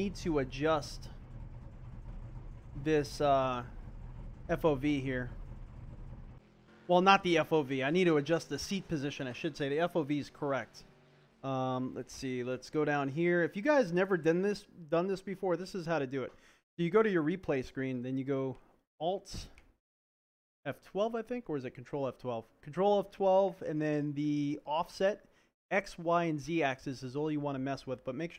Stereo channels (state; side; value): identical; both; correlation 1.00